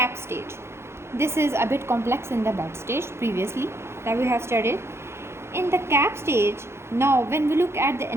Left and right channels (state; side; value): late; left; 0.12 ms